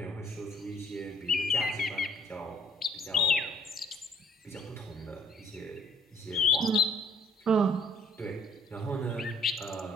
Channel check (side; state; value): both; normal; correlation 0.58